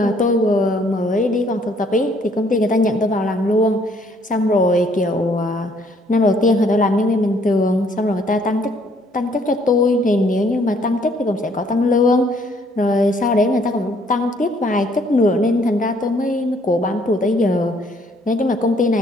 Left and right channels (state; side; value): normal; both; correlation 0.64